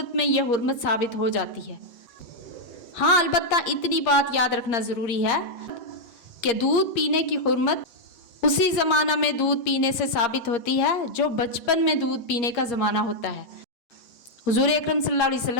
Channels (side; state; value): right; late; 8.5 ms